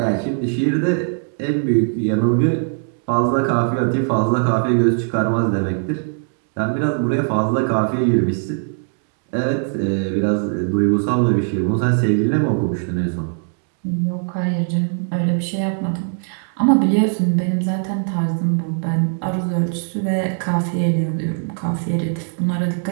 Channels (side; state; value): left; silent; 60 dB below the other